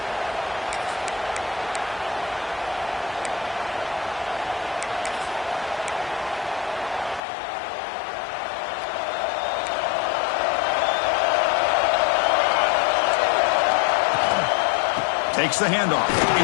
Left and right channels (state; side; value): drops out; right; at 7.2 s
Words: Takes the handoff.